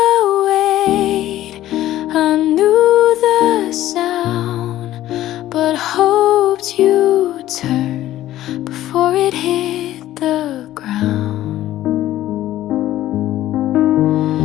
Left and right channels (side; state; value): right; quieter; 14.0 dB